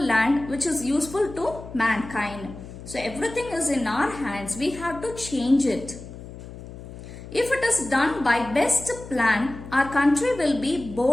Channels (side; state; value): left; noise; hum, 14 dB below the sound